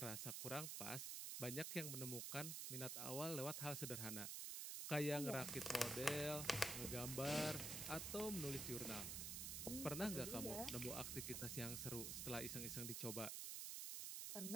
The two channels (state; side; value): noise; right; hiss, 2 dB below the sound